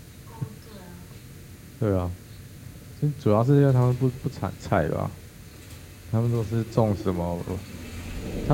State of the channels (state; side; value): identical; both; correlation 1.00